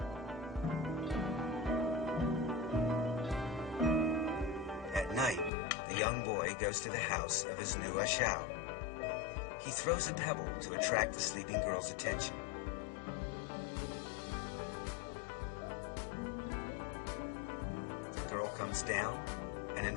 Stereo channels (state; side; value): drops out; right; at 5.5 s